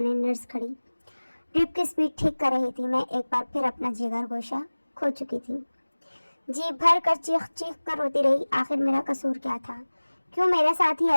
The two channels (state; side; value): inverted; both; correlation -1.00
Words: नर्स खड़ी ड्रिप की स्पीड ठीक कर रही थी। मैं एक बार फिर अपना जिगर गोशा खो चुकी थी। जी भर कर चीख चीख कर रोती रही। आखिर मेरा कसूर क्या था? क्यों मेरे साथ ही